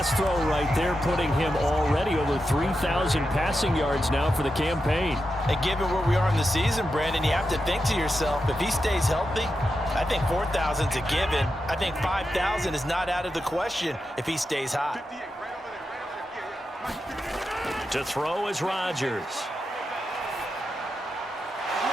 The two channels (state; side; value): normal; both; correlation 0.88